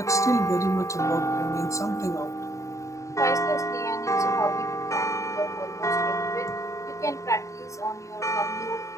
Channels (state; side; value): late; right; 0.15 ms